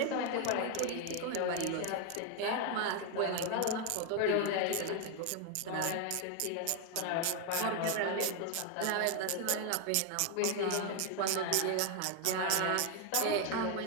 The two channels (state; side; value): different; both; correlation 0.01